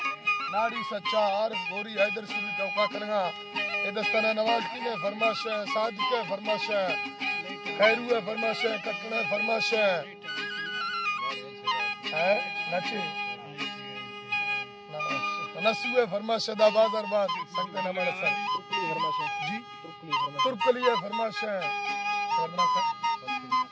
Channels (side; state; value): both; identical; correlation 1.00